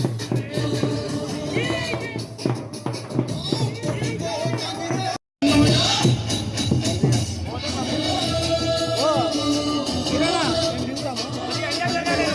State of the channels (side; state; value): both; identical; correlation 1.00